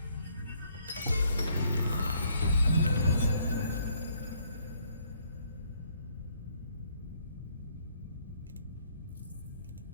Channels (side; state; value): both; inverted; correlation -0.67